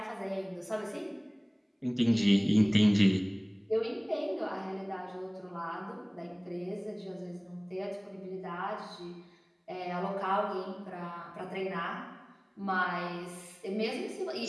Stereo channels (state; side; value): identical; both; correlation 1.00